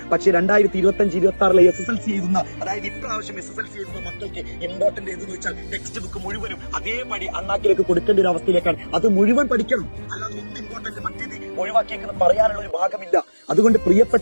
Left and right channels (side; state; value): both; inverted; correlation -1.00